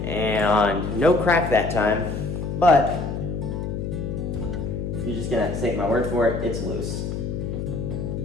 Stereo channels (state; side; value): noise; left; hum, 4 dB below the sound